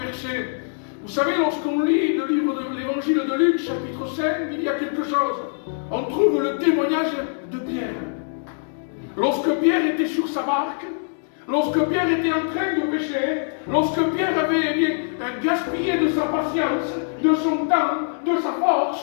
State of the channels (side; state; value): right; silent; digital silence